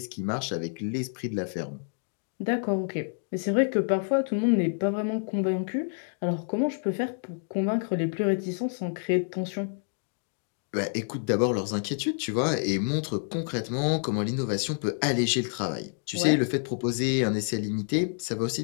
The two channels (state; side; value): silent; right; 59 dB below the other